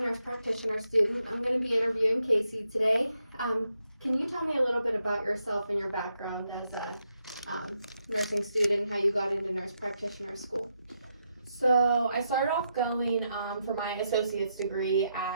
practitioner student. I'm going to be interviewing Casey today. Can you tell me a little bit about yourself and your background as a nursing student, how you got into nurse practitioner school? So I started off going for my associate's degree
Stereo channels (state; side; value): inverted; both; correlation -0.81